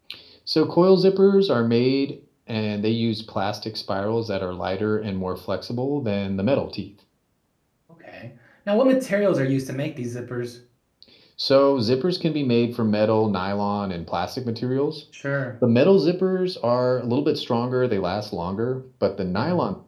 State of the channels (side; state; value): both; identical; correlation 1.00